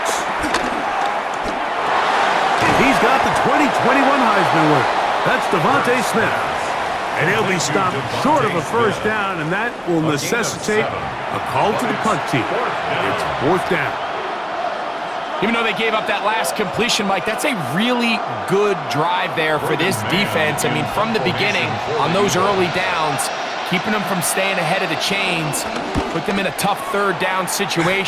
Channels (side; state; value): both; identical; correlation 1.00